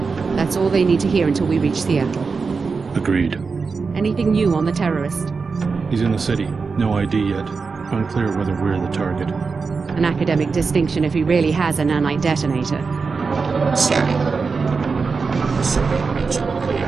That's all they need to hear until we reach Seattle. Agreed. Anything new on the terrorist? He's in the city. No ID yet. Unclear whether we're the target. An academic distinction if he really has a nanite detonator. Scanning. Survey region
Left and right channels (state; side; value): quieter; left; 4.8 dB